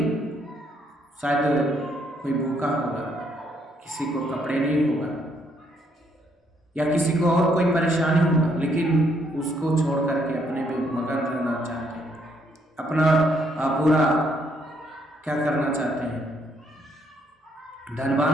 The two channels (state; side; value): normal; both; correlation 0.71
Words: शायद कोई भूखा होगा, किसी को कपड़े नहीं होगा या किसी को और कोई परेशानी होगा, लेकिन उसको छोड़ करके अपने में मगन रहना चाहते हैं, अपना पूरा क्या करना चाहते हैं, धनवान